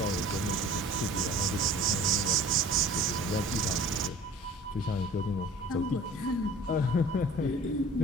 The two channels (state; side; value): normal; both; correlation 0.45